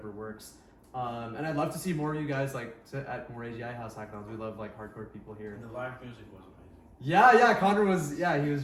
works. And I'd love to see more of you guys like at more AGI House hackathons. We love like hardcore people here. And the live music was amazing. Yeah, Connor was he was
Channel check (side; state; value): both; identical; correlation 1.00